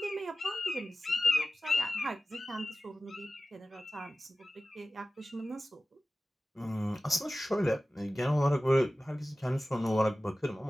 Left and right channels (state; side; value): normal; both; correlation 0.96